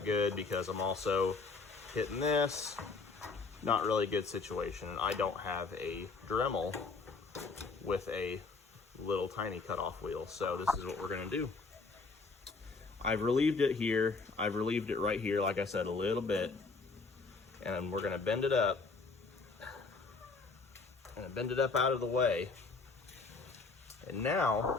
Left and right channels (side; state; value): right; quieter; 4.2 dB